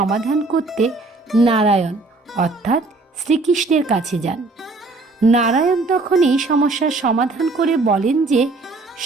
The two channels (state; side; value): quieter; left; 3.5 dB